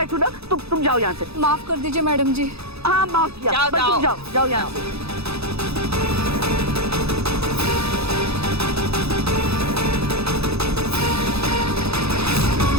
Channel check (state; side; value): late; left; 0.78 ms